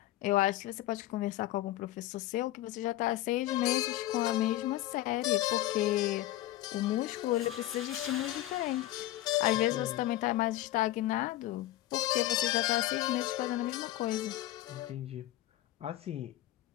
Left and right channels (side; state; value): right; quieter; 15.3 dB